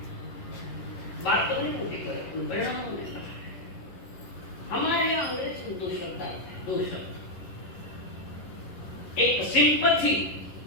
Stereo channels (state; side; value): late; right; 11 ms